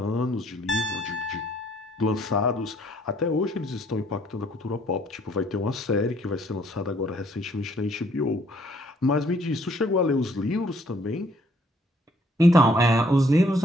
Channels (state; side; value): normal; both; correlation 0.64